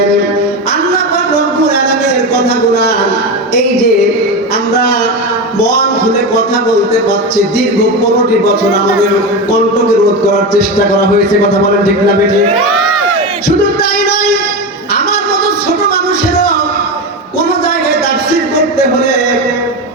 আল্লাহ পাক রব্বুল আলামিনের কথাগুলো এই যে আমরা মন খুলে কথা বলতে পারছি, দীর্ঘ 15টি বছর আমাদের কণ্ঠকে রোধ করার চেষ্টা করা হয়েছে। কথা বলেন ঠিক না বেঠিক? শুধু তাই নয়, আমার মতো ছোট মানুষেরও কোন জায়গায় তাফসীর করতে হলে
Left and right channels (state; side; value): normal; both; correlation 0.19